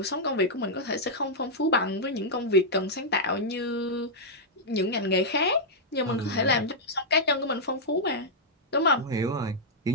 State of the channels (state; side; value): normal; both; correlation -0.07